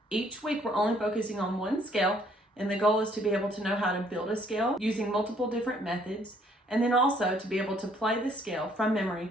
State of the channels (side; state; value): both; normal; correlation 0.64